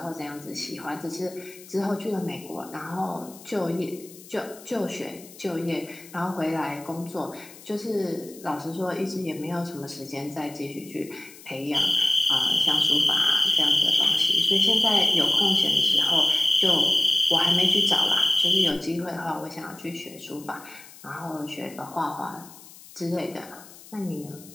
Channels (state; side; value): noise; left; hiss, 19 dB below the sound